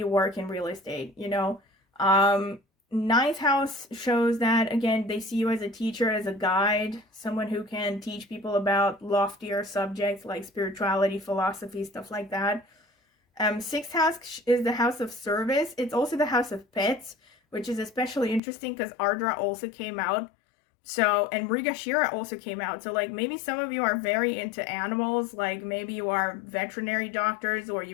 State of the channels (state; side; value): drops out; right; at 18.4 s